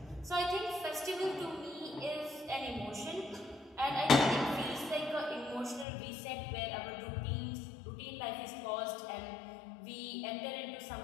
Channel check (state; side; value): drops out; right; at 5.9 s